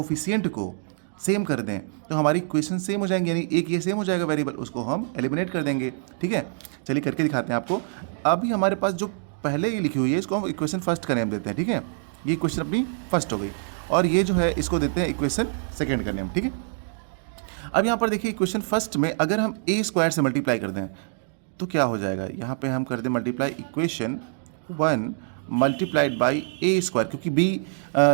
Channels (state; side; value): silent; left; digital silence